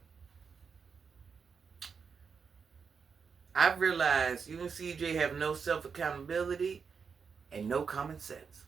I've realized you and CJ have no self-accountability and no common sense.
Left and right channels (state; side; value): quieter; left; 5.9 dB